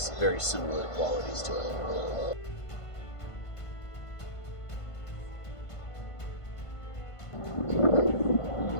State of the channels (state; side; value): late; right; 1.5 ms